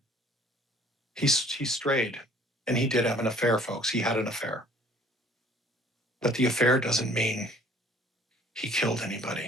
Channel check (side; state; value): both; normal; correlation 0.54